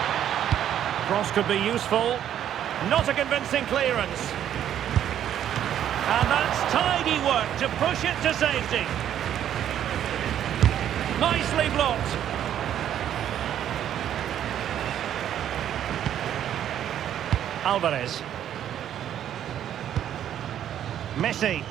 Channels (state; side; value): quieter; left; 10.4 dB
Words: Cross could be useful. Not a convincing clearance. And that's tidy work to push it to safety. Nicely blocked. Alvarez. Messi.